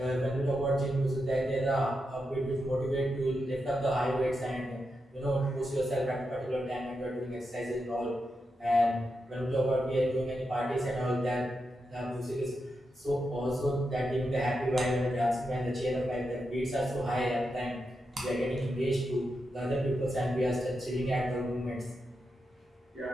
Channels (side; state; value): both; normal; correlation 0.87